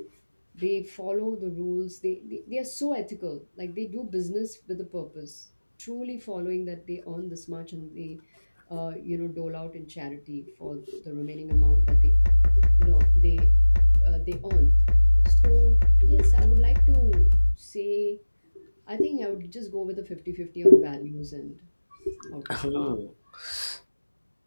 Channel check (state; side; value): inverted; both; correlation -1.00